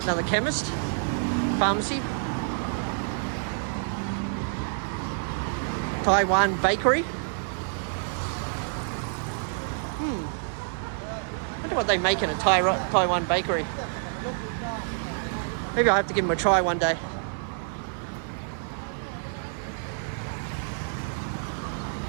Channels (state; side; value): silent; left; 60 dB below the other